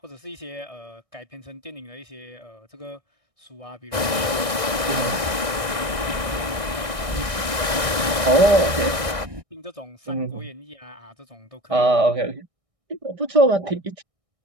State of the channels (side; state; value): left; late; 1.6 ms